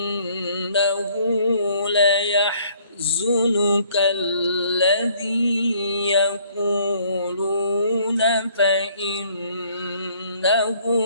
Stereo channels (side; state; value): both; inverted; correlation -0.62